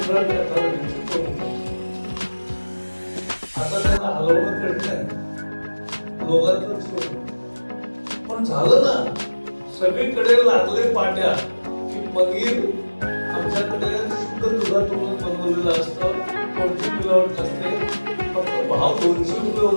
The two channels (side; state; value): both; inverted; correlation -1.00